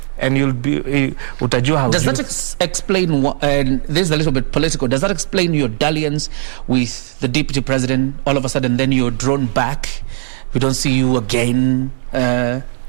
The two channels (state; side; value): silent; left; digital silence